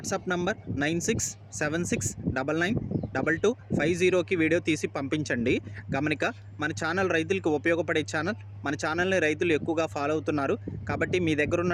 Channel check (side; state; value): both; identical; correlation 1.00